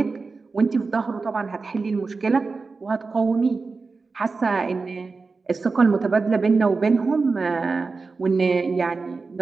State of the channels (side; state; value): left; quieter; 4.2 dB